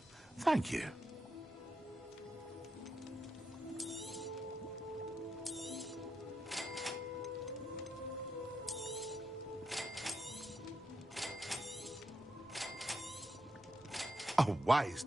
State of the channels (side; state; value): both; normal; correlation 0.84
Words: Thank you. A wise